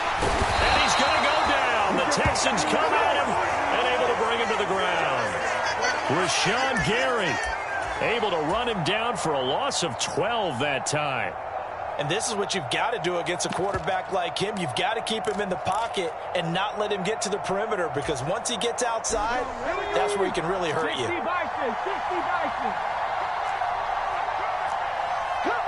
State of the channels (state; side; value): identical; both; correlation 1.00